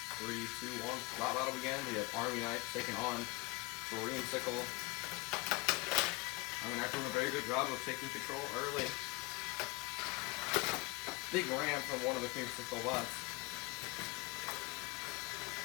3, 2, 1. Battle begin. We have Army Knife taking on Creamsicle. Army Knife doing a very good job of taking control early. Big ram from one of the Creamsicle bots.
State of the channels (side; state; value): right; quieter; 24.3 dB